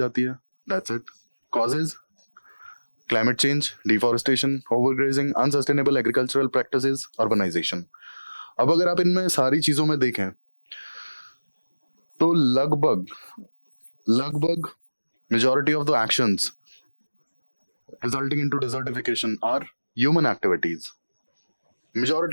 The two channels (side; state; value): both; inverted; correlation -1.00